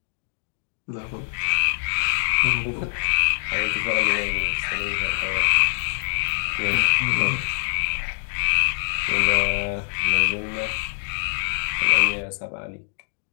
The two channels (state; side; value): silent; right; 63 dB below the other